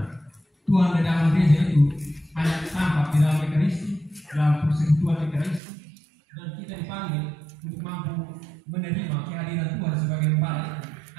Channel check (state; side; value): drops out; left; at 5.6 s